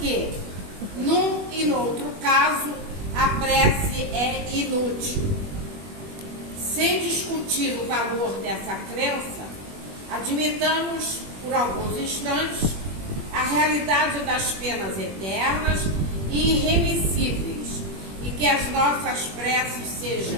num e no outro caso, a prece é inútil. Sem discutir o valor dessa crença, admitamos, por alguns instantes, a realidade das penas eternas e irremissíveis, e que as nossas preces sejam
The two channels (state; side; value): late; left; 21 ms